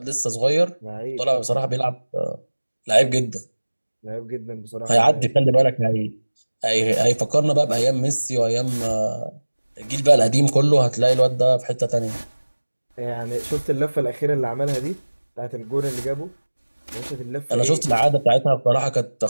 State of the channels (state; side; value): inverted; both; correlation -1.00